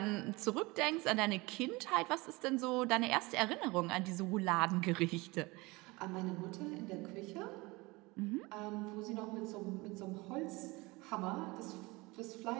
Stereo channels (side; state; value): left; quieter; 23.5 dB